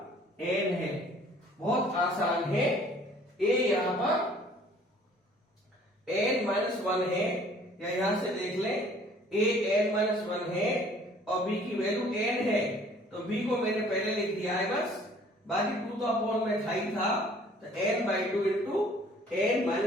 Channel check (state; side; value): normal; both; correlation 0.55